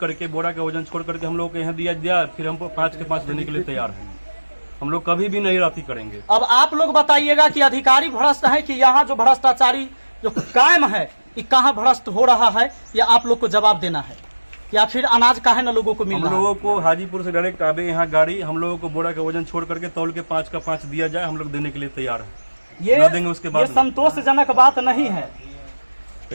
बोरा का वजन छोड़ करके हम लोगों को यहाँ दिया, फिर हम 5 के 5 देने के लिए तैयार हैं। हम लोग कभी भी नहीं राती करेंगे। अब आप लोग बताइएगा कि अधिकारी भ्रष्ट है कि यहाँ जो भ्रष्टाचारी जो कायम है कि कहाँ भ्रष्ट हो रहा है, या आप लोग को जवाब देना है, या फिर अनाज काहे न लोगों को मिल हम रहा है? लोगों को हाजीपुर से डायरेक्ट आवे यहाँ गाड़ी, हम लोगों को बोरा का वजन छोड़ करके तौल के 5 का 5 दिया जाए, हम लोग देने के लिए तैयार हैं। न देंगे उसके बाद ये संतोषजनक बात नहीं है।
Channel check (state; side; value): inverted; both; correlation -1.00